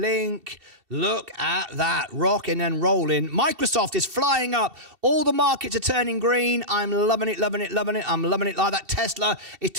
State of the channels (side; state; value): left; late; 2.7 ms